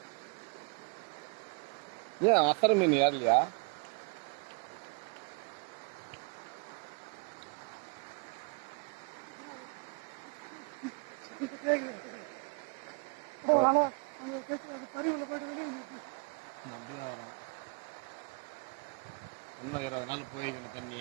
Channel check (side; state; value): left; quieter; 34.0 dB